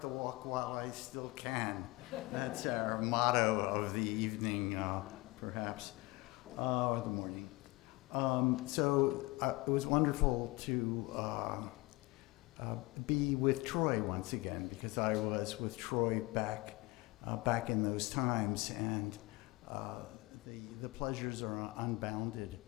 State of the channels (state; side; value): quieter; right; 22.4 dB